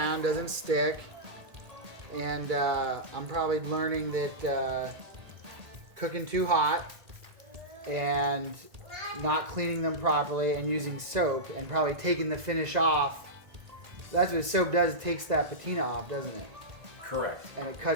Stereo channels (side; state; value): left; late; 2.0 ms